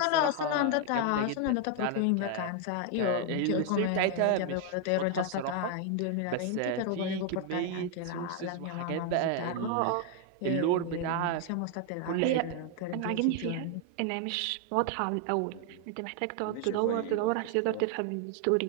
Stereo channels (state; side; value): different; both; correlation 0.00